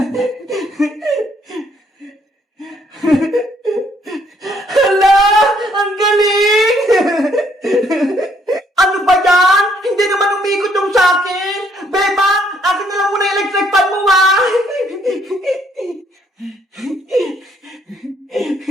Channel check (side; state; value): both; normal; correlation 0.67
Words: Hala! Ang galing! Ano ba yan? Hindi naman umikot yung sa'kin! Bebang! Akin na lang muna yung electric fan mo, ha?